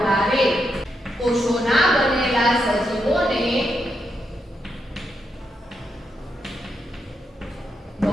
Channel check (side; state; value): both; normal; correlation 0.82